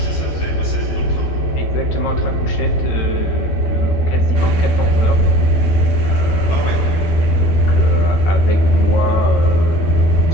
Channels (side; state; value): right; late; 12 ms